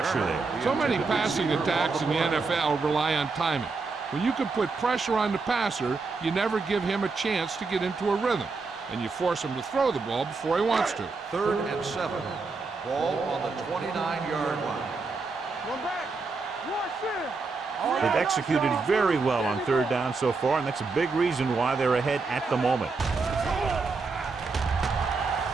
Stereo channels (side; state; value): left; quieter; 4.2 dB